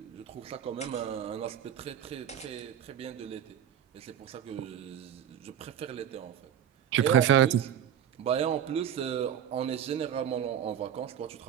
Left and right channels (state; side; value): quieter; left; 9.6 dB